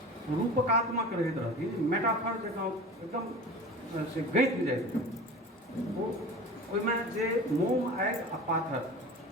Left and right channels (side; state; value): both; normal; correlation 0.35